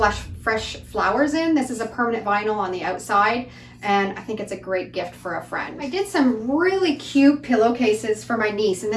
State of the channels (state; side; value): identical; both; correlation 1.00